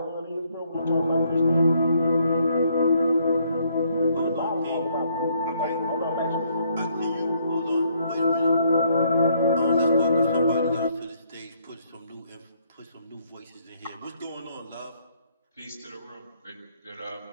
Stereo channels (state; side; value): inverted; both; correlation -0.69